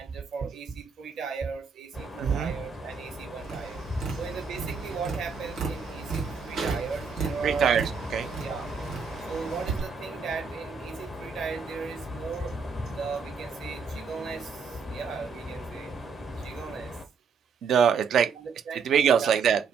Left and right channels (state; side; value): quieter; left; 5.6 dB